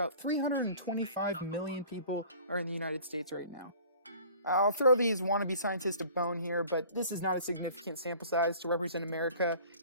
325 million people are in the United States right now. I'll throw these wannabe scientists a bone here, but this is not a significant sample size to represent America.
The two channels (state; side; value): inverted; both; correlation -0.48